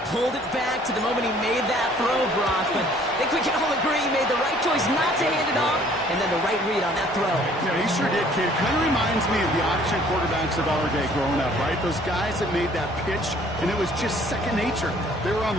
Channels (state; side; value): normal; both; correlation 0.57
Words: pulled it back to the moment he made that throw, Brock. But I think we can all agree he made the right choice not to hand it off, and then the right read on that throw. Yeah, he sure did, kid. Kind of reminds me of the option quarterbacks of our day growing up, right? Those guys that made that pitch, and it was just second nature. They were on